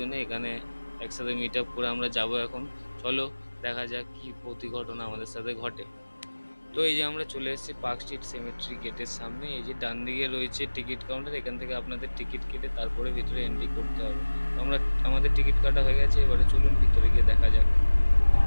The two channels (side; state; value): both; inverted; correlation -1.00